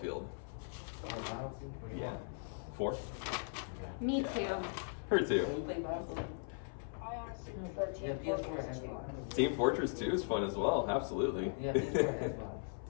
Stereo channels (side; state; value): right; silent; 52 dB below the other